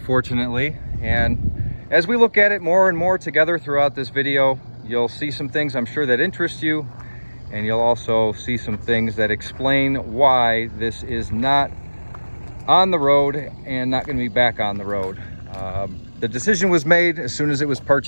And as we look at it more and more together throughout this video, you'll see some things I'm sure that interest you, and you'll also see some things that explain why this is not on the road and not going to be back on the road. The decision was made as soon as it was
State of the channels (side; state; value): both; inverted; correlation -1.00